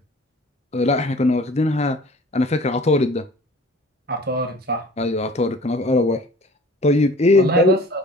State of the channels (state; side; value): normal; both; correlation 0.47